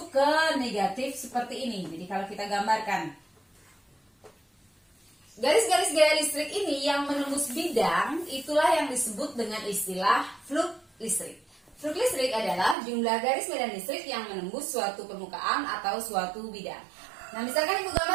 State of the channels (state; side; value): drops out; left; at 12.8 s